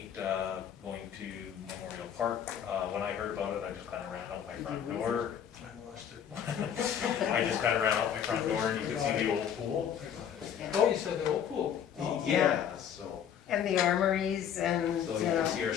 going to Memorial Park. When I heard about it, I just kinda ran out my front door. I lost it. I just kinda ran out my front door, and you could see the old pool. I got it. Oh, you said the old pool. Oh. Yeah, so And the armories and you can see our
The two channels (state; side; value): quieter; right; 8.8 dB